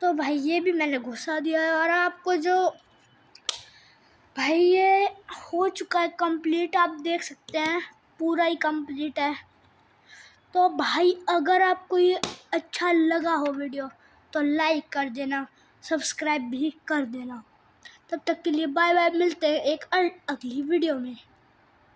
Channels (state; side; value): identical; both; correlation 1.00